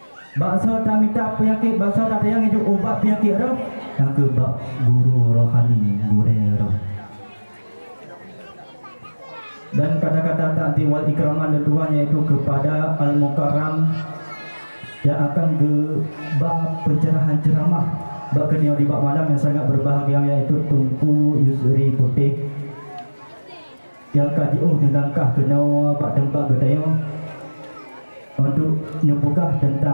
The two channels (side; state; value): both; inverted; correlation -1.00